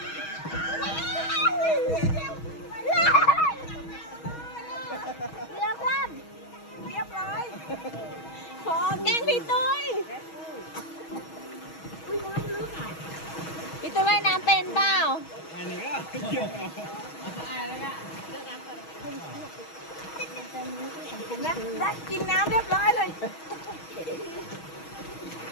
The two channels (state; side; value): late; right; 6.3 ms